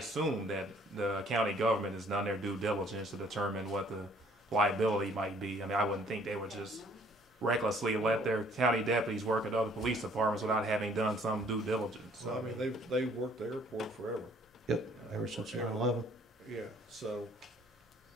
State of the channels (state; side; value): normal; both; correlation 0.59